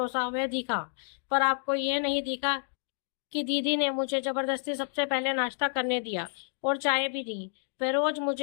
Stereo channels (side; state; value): right; silent; digital silence